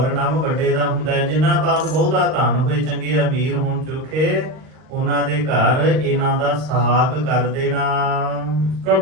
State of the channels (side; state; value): left; late; 38 ms